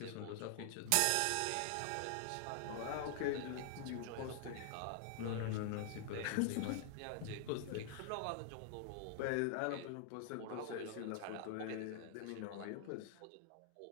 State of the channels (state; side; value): different; both; correlation 0.00